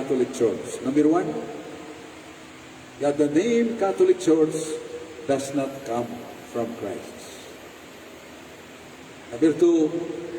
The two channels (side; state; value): both; identical; correlation 1.00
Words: Church. Number one, that the name Catholic Church does not come from Christ. Number two,